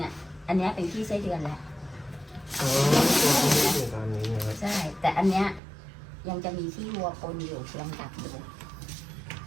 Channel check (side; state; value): left; drops out; at 5.6 s